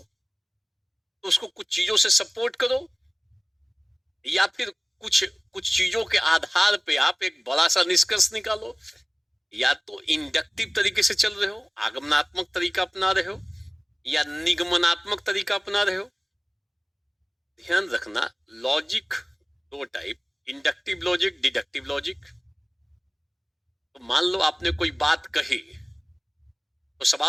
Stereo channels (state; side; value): identical; both; correlation 1.00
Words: तो उसको कुछ चीजों से सपोर्ट करो, या फिर कुछ चीजों के आधार पे आप एक बड़ा सा निष्कर्ष निकालो। या तो इंडक्टिव तरीके से चल रहे हो, आगमनात्मक तरीका अपना रहे हो, या निगमनात्मक तरीका अपना रहे हो? ध्यान रखना, लॉजिक दो type, inductive logic, deductive logic. तो मान लो आपने कोई बात कही, तो